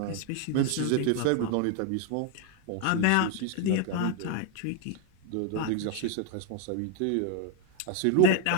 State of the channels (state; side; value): different; both; correlation 0.01